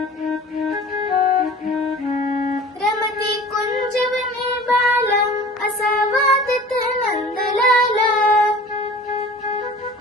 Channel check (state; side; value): normal; both; correlation 0.43